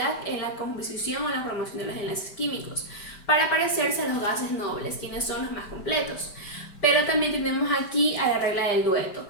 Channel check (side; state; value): right; late; 5.1 ms